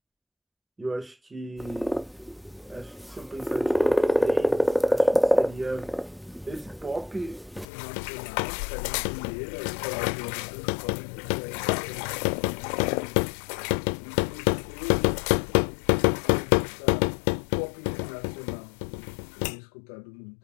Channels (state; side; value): drops out; right; at 7.7 s